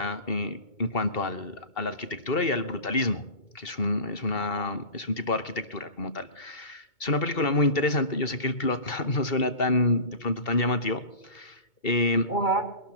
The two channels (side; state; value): right; late; 2.2 ms